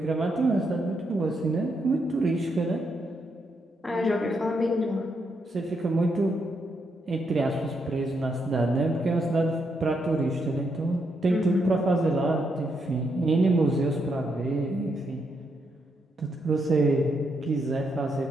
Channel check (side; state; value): both; normal; correlation 0.79